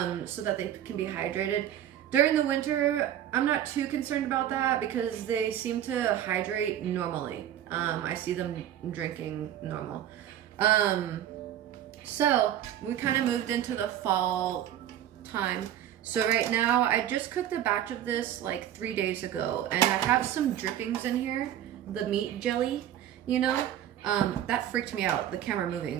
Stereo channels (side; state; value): left; quieter; 11.2 dB